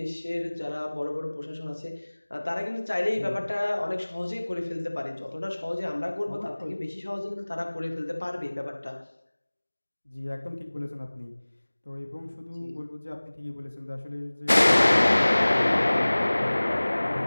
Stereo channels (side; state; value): both; inverted; correlation -1.00